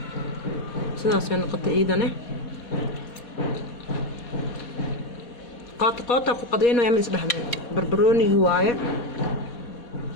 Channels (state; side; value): late; right; 4.2 ms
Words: سداسين نقطة ايدانه قاطع فقدينه يا مس دحمه بربروني هوايه